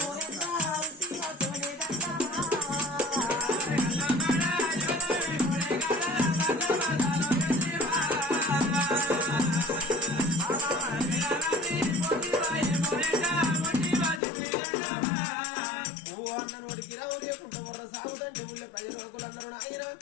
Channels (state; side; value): drops out; right; at 14.2 s